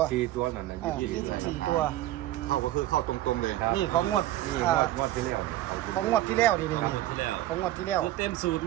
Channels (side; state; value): left; quieter; 14.7 dB